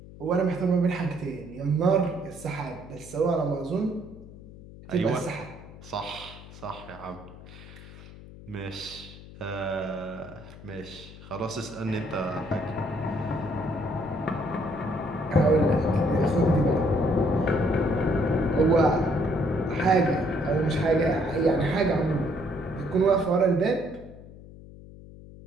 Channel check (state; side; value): noise; left; hum, 17 dB below the sound